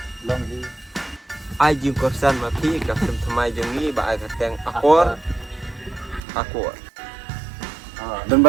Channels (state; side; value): drops out; left; at 6.2 s